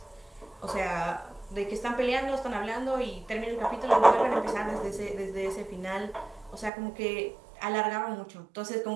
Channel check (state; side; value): drops out; left; at 6.7 s